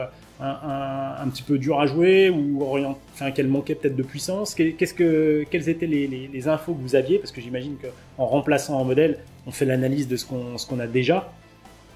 un petit peu dure à jouer, ou qu'elle manquait peut-être de puissance. Quelles étaient les infos que vous aviez? Parce que j'imagine qu'en remplaçant un modèle, on fait l'analyse de ce qu'on a déjà.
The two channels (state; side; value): identical; both; correlation 1.00